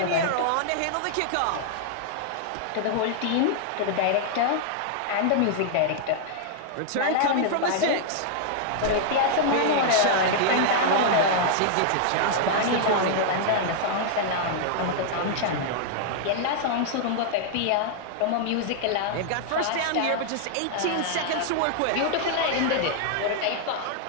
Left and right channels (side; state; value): both; different; correlation -0.01